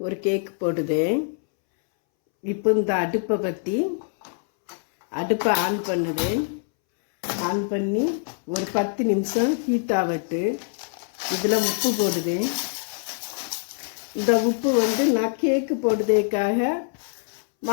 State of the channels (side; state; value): right; silent; 62 dB below the other